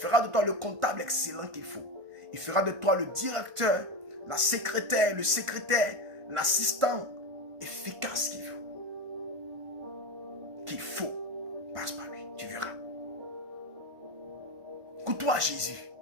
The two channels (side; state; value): left; late; 1.5 ms